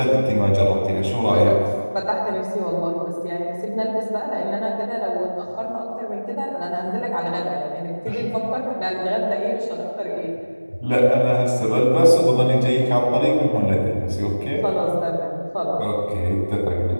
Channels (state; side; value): inverted; both; correlation -1.00